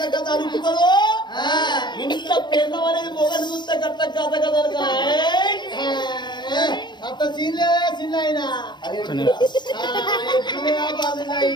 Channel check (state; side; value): late; right; 0.21 ms